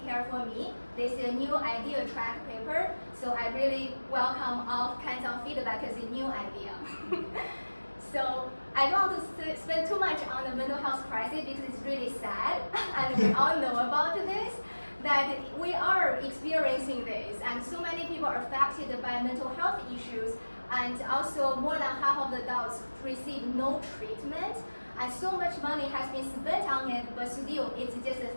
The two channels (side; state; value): both; inverted; correlation -1.00